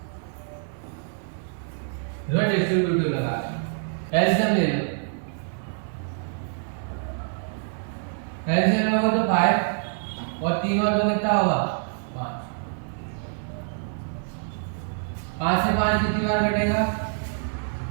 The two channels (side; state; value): left; silent; 61 dB below the other